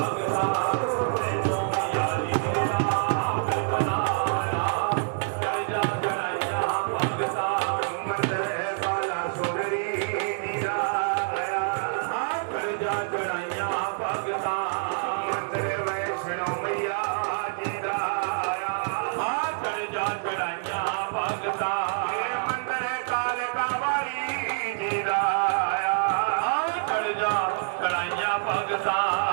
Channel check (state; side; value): silent; left; digital silence